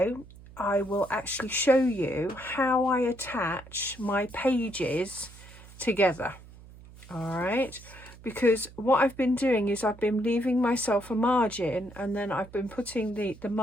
I will actually show you how I attach my pages together. All right, because what I've been doing is I've been leaving myself a margin, and then I've been putting the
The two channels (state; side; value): noise; right; hum, 20 dB below the sound